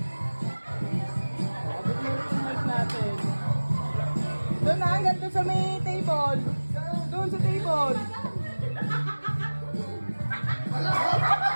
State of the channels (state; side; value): inverted; both; correlation -1.00